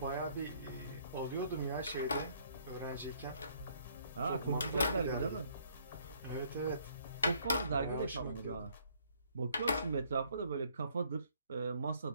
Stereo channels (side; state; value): both; inverted; correlation -0.64